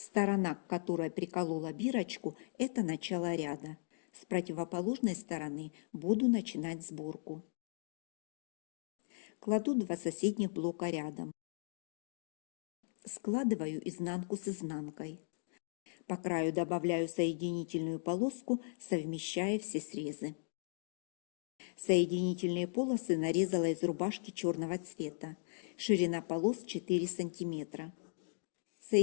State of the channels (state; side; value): silent; right; digital silence